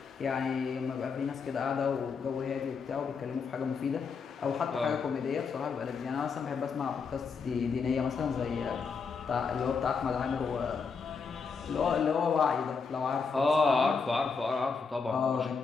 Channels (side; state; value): right; quieter; 5.3 dB